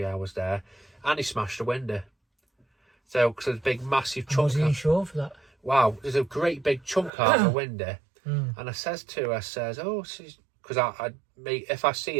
hours there, and he smashed a window. So, because there's a big, massive chunk. Was he insured for that? Wow, there's a great big chunk out of the window. And I says to her, because if I see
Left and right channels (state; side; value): drops out; left; at 7.1 s